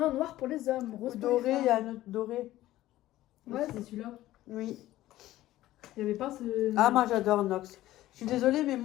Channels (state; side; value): quieter; right; 15.2 dB